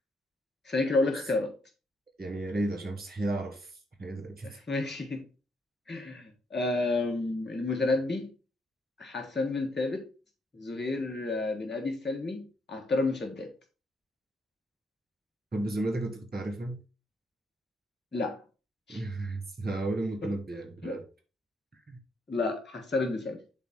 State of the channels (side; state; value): both; normal; correlation 0.74